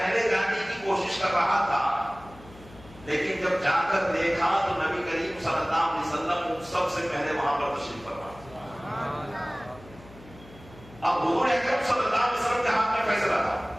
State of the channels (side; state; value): left; noise; hum, 21 dB below the sound